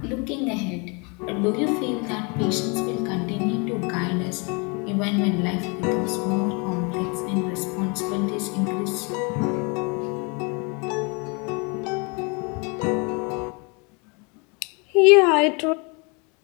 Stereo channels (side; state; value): right; quieter; 31.8 dB